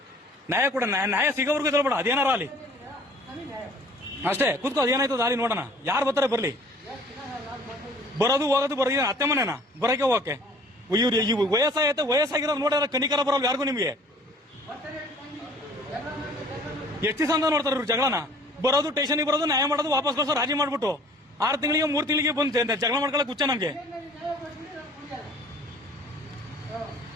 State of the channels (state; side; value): normal; both; correlation 0.52